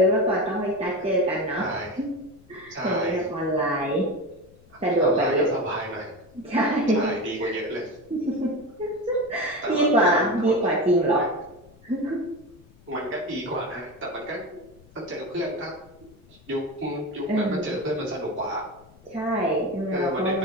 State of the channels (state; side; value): noise; left; rumble, 26 dB below the sound